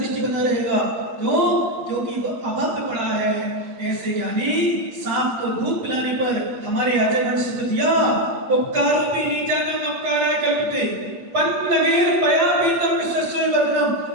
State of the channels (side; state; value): left; late; 8.6 ms